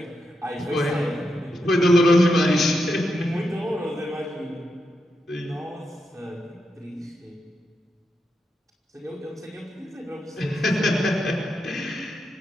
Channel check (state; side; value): normal; both; correlation 0.85